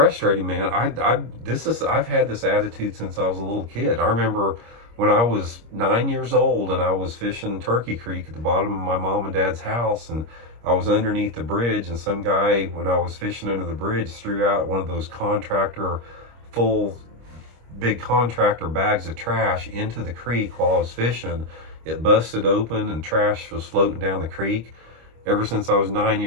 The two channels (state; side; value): late; left; 25 ms